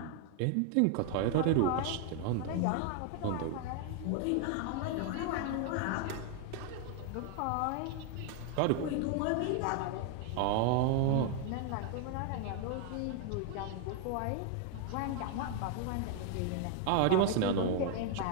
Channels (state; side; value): different; both; correlation 0.00